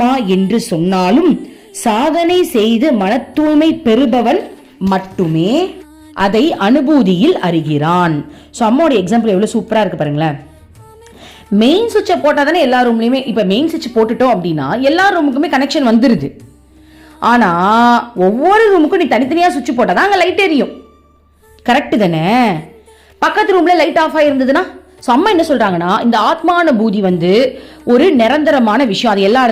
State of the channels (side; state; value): both; identical; correlation 1.00